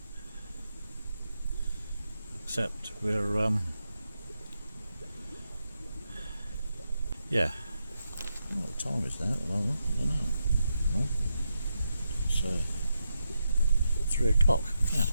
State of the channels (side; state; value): both; inverted; correlation -0.85